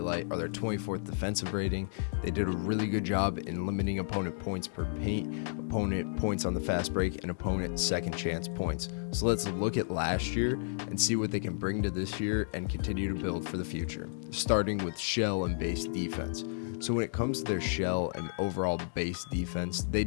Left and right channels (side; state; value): right; silent; digital silence